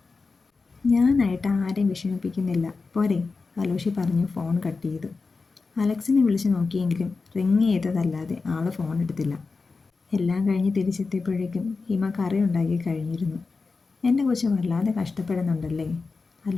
ഞാനായിട്ട് ആരെയും വിഷമിപ്പിക്കുന്നില്ല, പോരെ, അലോഷി പറഞ്ഞു ഫോൺ കട്ട് ചെയ്തു. അലക്സിനെ വിളിച്ച് നോക്കിയെങ്കിലും റിങ് ചെയ്തതല്ലാതെ ആൾ ഫോൺ എടുത്തില്ല. എല്ലാം കഴിഞ്ഞ് തിരിച്ചെത്തിയപ്പോഴേക്കും ഹിമ കറി ഉണ്ടാക്കി കഴിഞ്ഞിരുന്നു. എൻ്റെ കൊച്ച് വല്ലാതെ കഷ്ടപ്പെടുന്നുണ്ടല്ലേ,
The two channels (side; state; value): right; quieter; 4.2 dB